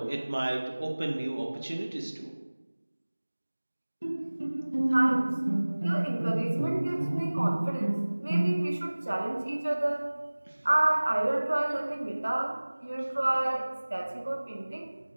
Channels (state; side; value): inverted; both; correlation -1.00